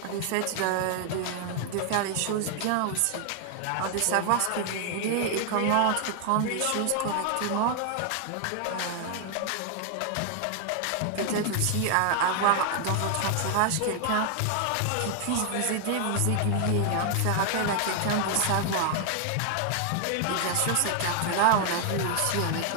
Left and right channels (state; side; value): different; both; correlation 0.00